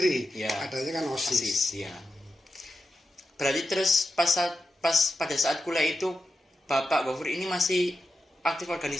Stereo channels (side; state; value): both; normal; correlation 0.90